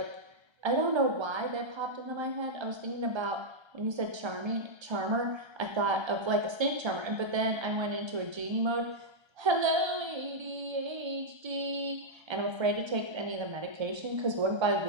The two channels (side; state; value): left; late; 1.3 ms